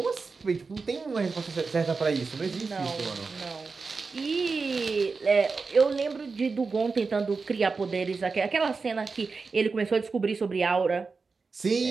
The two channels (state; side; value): quieter; left; 4.5 dB